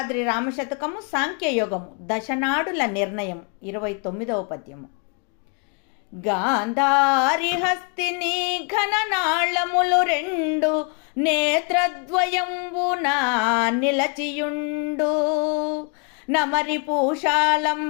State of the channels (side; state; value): right; quieter; 36.6 dB